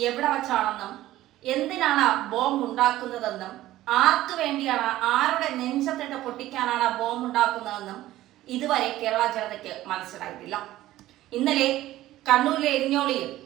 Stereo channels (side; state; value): left; quieter; 15.2 dB